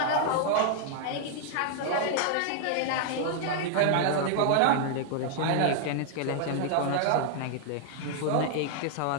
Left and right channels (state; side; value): different; both; correlation 0.00